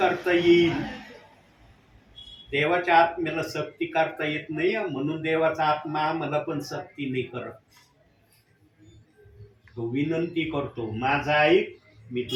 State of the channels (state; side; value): identical; both; correlation 1.00